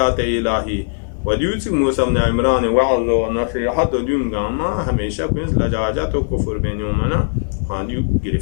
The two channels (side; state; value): right; silent; digital silence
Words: الهی و دیوتی موسی بن عمران وعظ و نصیحت و دیونگاما همیشه کنیز لجاجت و کفر بینیومنا خواندیو